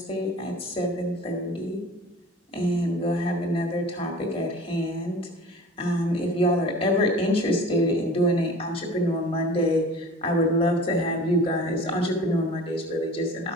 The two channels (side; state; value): both; normal; correlation 0.41